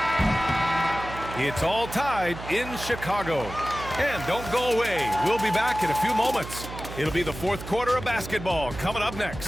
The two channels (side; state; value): right; noise; hum, 11 dB below the sound